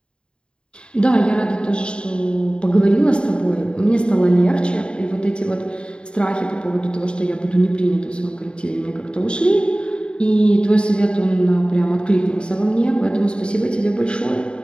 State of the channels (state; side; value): late; right; 0.052 ms